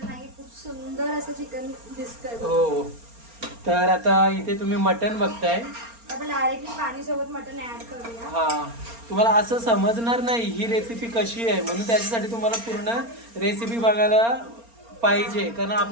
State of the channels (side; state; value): left; late; 4.3 ms